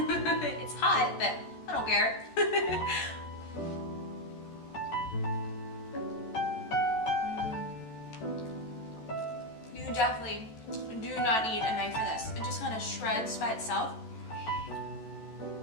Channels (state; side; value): late; right; 14 ms